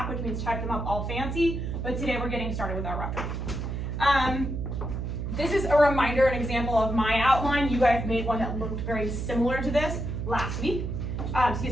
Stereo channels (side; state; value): right; noise; hum, 4 dB below the sound